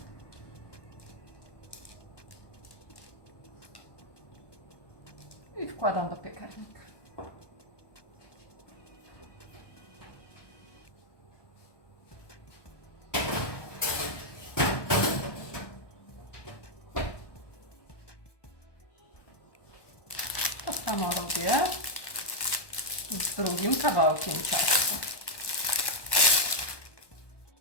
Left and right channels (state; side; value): late; right; 1.2 ms